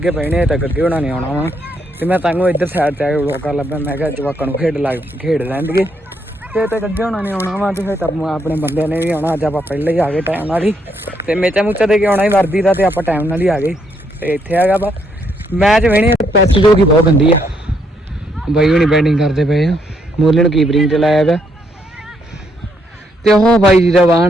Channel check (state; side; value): normal; both; correlation 0.74